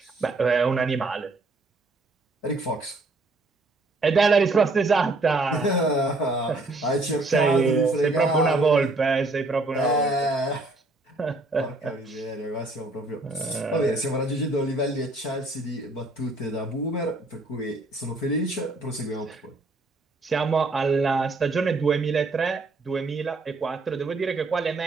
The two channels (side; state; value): left; quieter; 3.0 dB